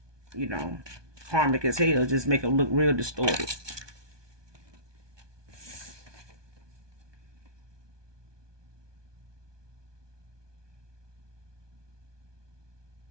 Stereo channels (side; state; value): left; late; 1.2 ms